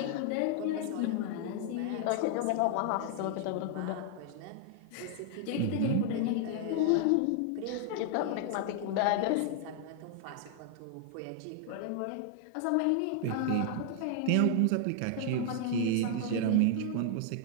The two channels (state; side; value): different; both; correlation 0.00